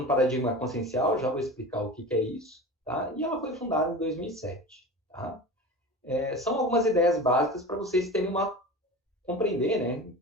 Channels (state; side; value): normal; both; correlation 0.33